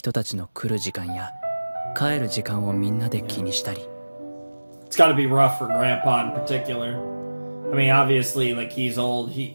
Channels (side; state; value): both; inverted; correlation -1.00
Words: たちの来る時間や帰る時間をみんなで気にしたり。 It's got to be rough for Grandpa in particular. I mean, obviously, like he's old, he